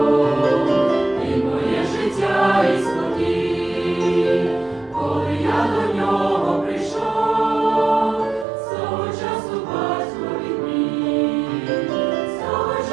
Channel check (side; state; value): left; drops out; at 8.5 s